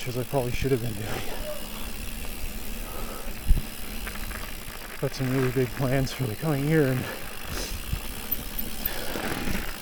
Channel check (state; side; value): identical; both; correlation 1.00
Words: as I probably should have been doing. Got some really big plans for the coming year, and